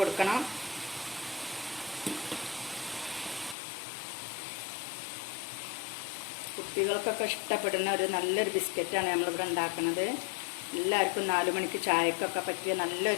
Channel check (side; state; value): right; drops out; at 3.6 s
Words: കുട്ടികൾക്കൊക്കെ ഇഷ്ടപ്പെടുന്ന ഒരു നല്ലൊരു ബിസ്ക്കറ്റാണ് നമ്മളിവിടെ ഉണ്ടാക്കുന്നത്. എല്ലാവർക്കും 4 മണിക്ക് ചായക്കൊക്കെ പറ്റിയ